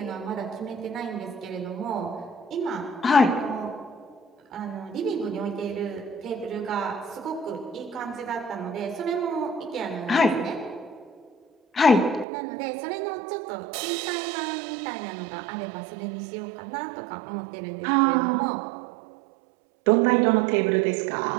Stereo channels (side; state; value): left; drops out; at 12.2 s